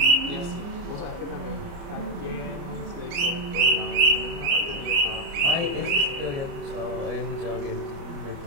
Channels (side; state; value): left; late; 29 ms